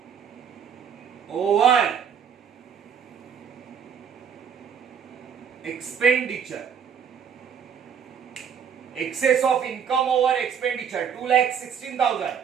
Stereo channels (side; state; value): left; quieter; 7.5 dB